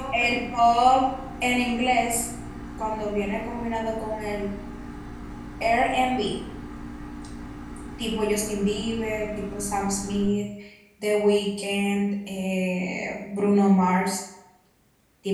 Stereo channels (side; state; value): both; identical; correlation 1.00